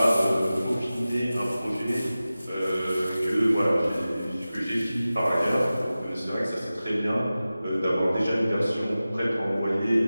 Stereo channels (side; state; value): both; inverted; correlation -0.96